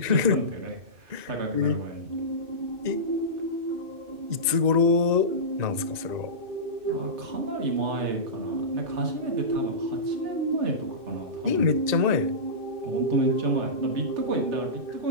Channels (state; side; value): late; left; 2.6 ms